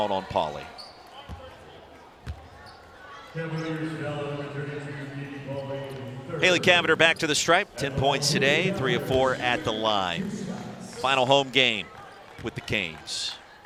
on Pauly. Hanna Cavinder back to the stripe, 10 points today, 3 of 4 at the line. Final home game with the Canes.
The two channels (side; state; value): both; identical; correlation 1.00